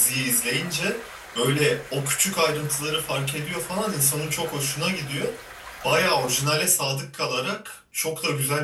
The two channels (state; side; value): identical; both; correlation 1.00